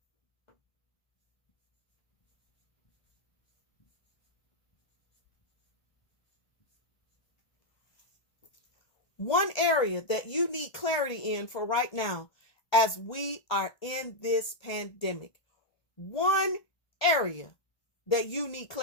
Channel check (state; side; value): late; right; 1.2 ms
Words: One area that you need clarity in for right now as we are in this pandemic. One area that you need